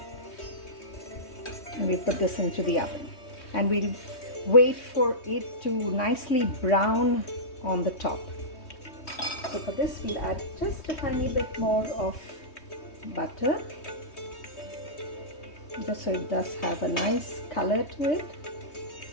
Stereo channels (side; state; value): right; late; 3.2 ms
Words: And we put this into the oven, and we'll wait for it to nicely brown on the top. So for this we'll add just a tiny bit more of butter, just so it does have a nice color to it.